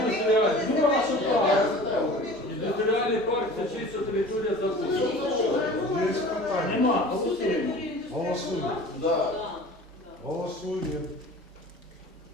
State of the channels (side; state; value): both; normal; correlation 0.41